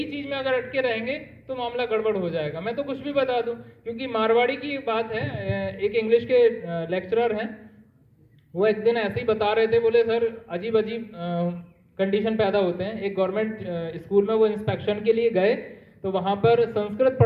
चीज में अगर अटके रहेंगे तो मामला गड़बड़ हो जाएगा। मैं तो कुछ भी बता दूं, क्योंकि मारवाड़ी की बात है, एक इंग्लिश के लेक्चरर हैं, वो एक दिन ऐसे ही बता रहे थे, बोले सर अजीब अजीब कंडीशन पैदा होते हैं। एक गवर्नमेंट स्कूल में वो इंस्पेक्शन के लिए गए, तो वहां पर संस्कृत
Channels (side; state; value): both; identical; correlation 1.00